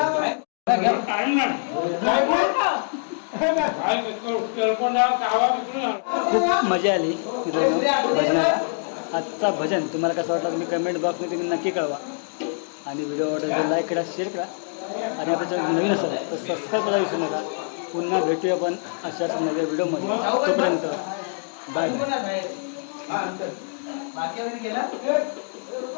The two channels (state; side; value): silent; right; 62 dB below the other